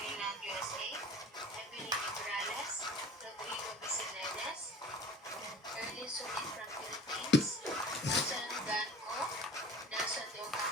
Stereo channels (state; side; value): normal; both; correlation 0.43